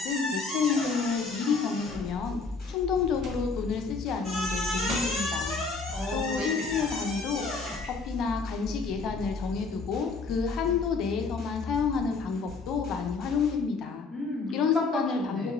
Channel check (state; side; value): quieter; right; 4.4 dB